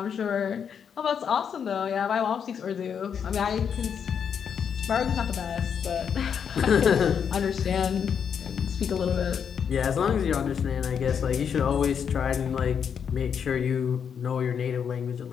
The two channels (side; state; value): right; quieter; 7.4 dB